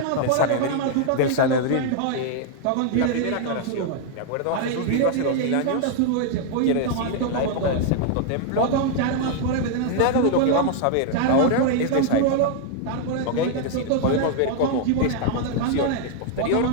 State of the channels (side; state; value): both; different; correlation 0.00